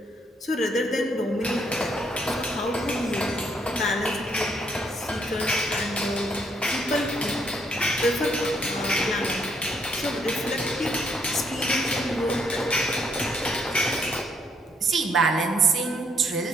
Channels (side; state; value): both; normal; correlation 0.71